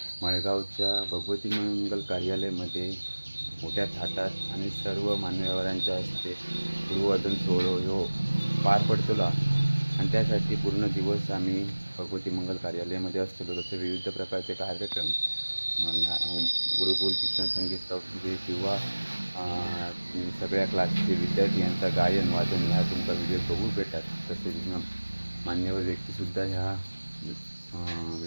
मळगावच्या भगवती मंगल कार्यालयामध्ये मोठ्या थाटात आणि सर्व मान्यवरांच्या हस्ते गुरुवादन सोहळा ह्यो पार पडतलो आणि त्यासाठी पूर्ण दिवस आम्ही भगवती मंगल कार्यालयामध्ये असतो. तसे विविध प्रकारचे कार्यक्रम गुरुकुल शिक्षण संगीत संस्थेचे किंवा सगळ्या क्लासचे विद्यार्थी यांचा गायन वादन ह्या तुमचा व्हिडिओ बघू भेटतात. तसेच मान्यवर व्यक्तीसुद्धा ह्या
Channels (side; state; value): both; inverted; correlation -1.00